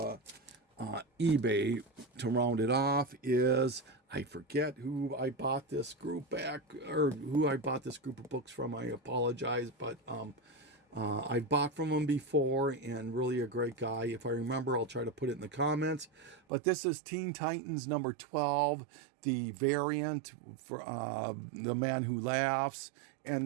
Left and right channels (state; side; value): drops out; left; at 16.4 s